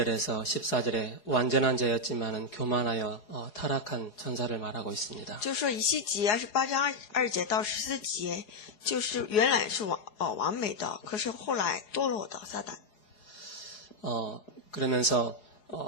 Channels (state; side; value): late; right; 4.8 ms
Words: 14절에 완전한 자였지만은 교만하여 타락한 천사를 말하고 있습니다. 就说以西结28章2节到14节，就是原来是完美的，可是后来堕落的撒旦。 그러면서